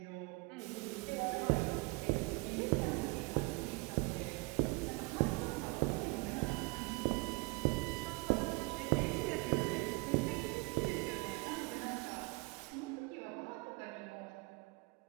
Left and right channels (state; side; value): quieter; left; 26.6 dB